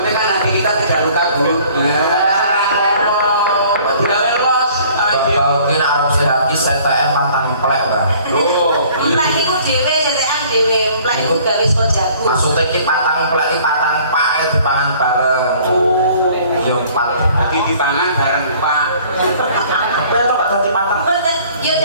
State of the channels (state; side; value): inverted; both; correlation -0.54